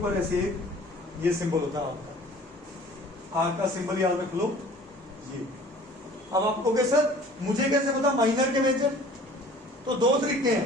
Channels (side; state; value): both; normal; correlation 0.48